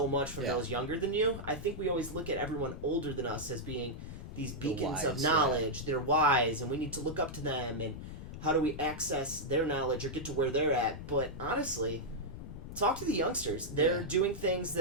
much from those younger than you. I think we always look at everyone older than us as being these beacons of knowledge. They're wise, and we need to look up to them. And how do we access their knowledge or get to where they're at? But honestly, talk to the youngsters. They're doing things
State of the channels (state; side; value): noise; left; rumble, 10 dB below the sound